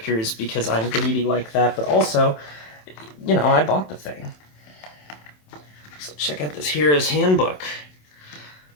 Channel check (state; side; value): late; right; 27 ms